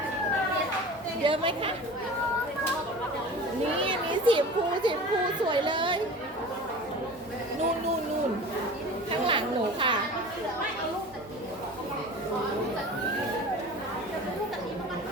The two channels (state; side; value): normal; both; correlation 0.37